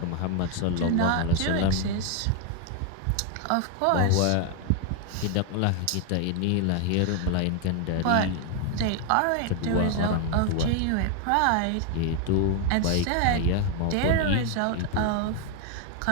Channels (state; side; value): different; both; correlation 0.01